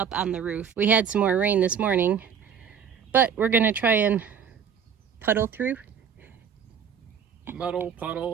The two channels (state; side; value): quieter; left; 7.5 dB